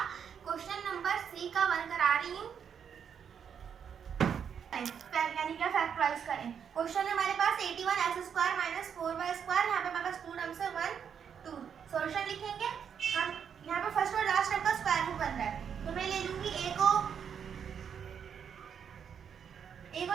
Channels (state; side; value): quieter; left; 7.6 dB